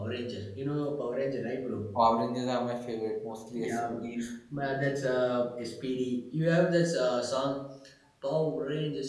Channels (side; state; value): both; identical; correlation 1.00